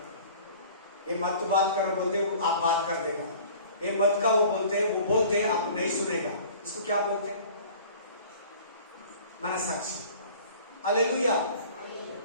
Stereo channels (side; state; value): both; inverted; correlation -0.47